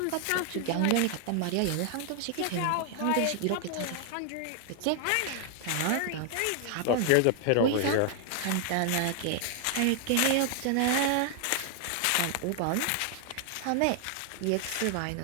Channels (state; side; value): different; both; correlation 0.00